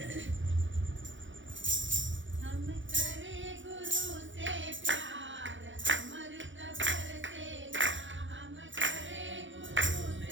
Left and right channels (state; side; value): late; left; 0.55 ms